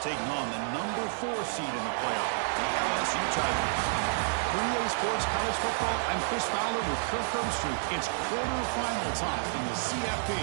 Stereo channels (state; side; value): silent; left; digital silence